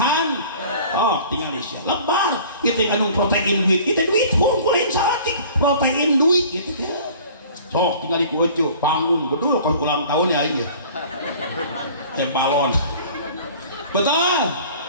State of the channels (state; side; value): inverted; both; correlation -0.47